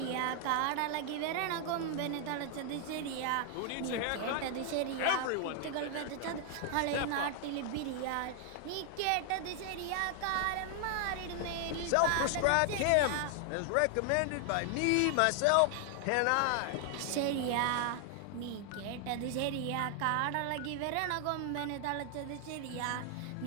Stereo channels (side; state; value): both; different; correlation 0.00